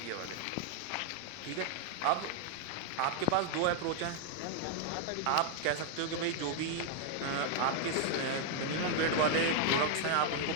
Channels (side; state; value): both; different; correlation 0.00